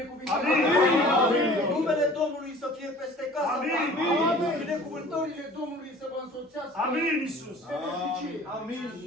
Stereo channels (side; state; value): both; normal; correlation 0.47